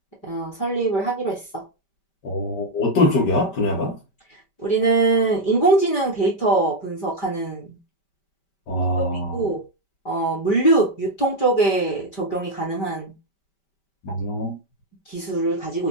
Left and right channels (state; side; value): late; right; 5.1 ms